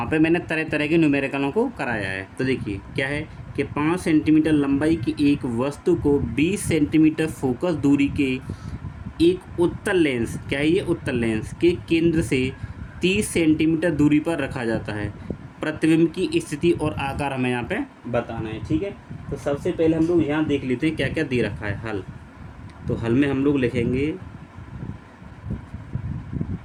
पे मैंने तरह तरह के न्यूमेरिकलों को कराया है। तो देखिए क्या है कि 5 सेंटीमीटर लंबाई की एक वस्तु को 20 सेंटीमीटर फोकस दूरी के एक उत्तल लेंस, क्या है ये, उत्तल लेंस के केंद्र से 30 सेंटीमीटर दूरी पर रखा जाता है। प्रतिबिंब की स्थिति और आकार हमें यहाँ पे बताना है। ठीक है, तो सबसे पहले हम लोग यहाँ देख लेते हैं क्या क्या दे रखा है। हल, तो हल में हम लोग लिखेंगे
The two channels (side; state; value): both; identical; correlation 1.00